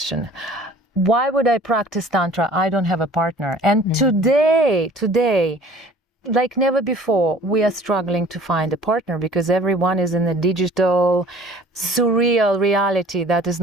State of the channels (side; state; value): both; normal; correlation 0.49